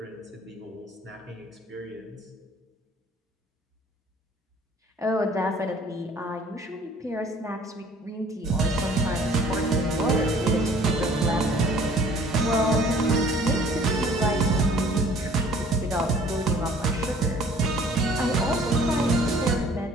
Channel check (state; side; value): normal; both; correlation 0.53